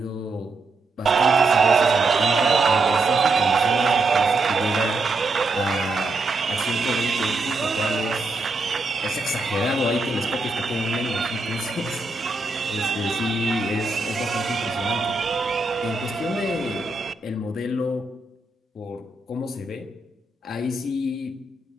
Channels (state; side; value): quieter; left; 3.3 dB